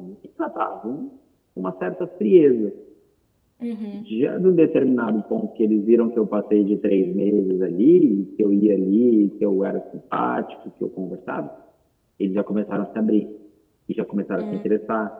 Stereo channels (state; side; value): identical; both; correlation 1.00